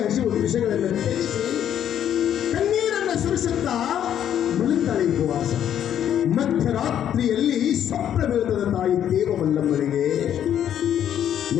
ಹಸಿವು ವಿಷಯಗಳನ್ನು ತ್ಯಜಿಸಿ ಕಣ್ಣೀರನ್ನು ಸುರಿಸುತ್ತಾ ಮಲಗ್ತಾಳೆ ಉಪವಾಸ. ಮಧ್ಯರಾತ್ರಿಯಲ್ಲಿ ಸ್ವಪ್ನ ಬೀಳುತ್ತದೆ ತಾಯಿ ದೇವ ಮಲ್ಲಮ್ಮನಿಗೆ.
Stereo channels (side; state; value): right; quieter; 10.0 dB